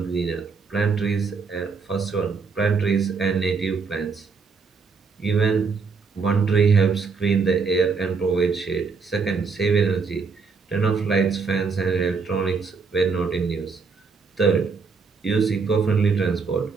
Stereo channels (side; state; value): left; quieter; 5.0 dB